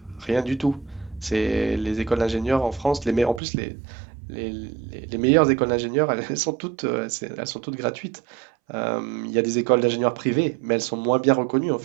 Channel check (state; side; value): drops out; left; at 3.4 s